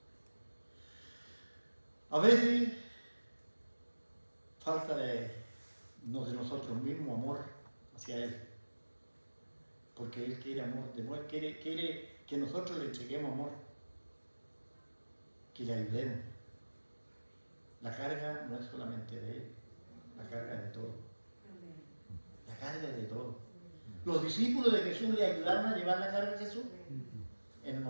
A veces falta de nosotros mismos amor hacia Él, porque Él quiere amor, quiere que nosotros le entreguemos amor, que le ayudemos. La carga no es solamente de Él, la carga es de todo. La carga es de todo. Los discípulos de Jesús le ayudaron a llevar la carga de Jesús. En el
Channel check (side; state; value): both; inverted; correlation -1.00